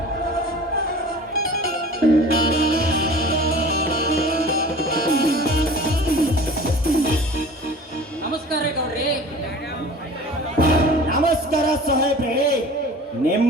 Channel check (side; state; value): both; normal; correlation 0.42